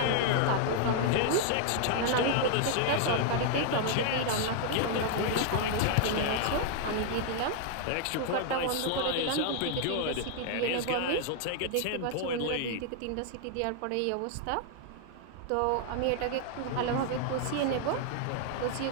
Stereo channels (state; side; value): different; both; correlation 0.00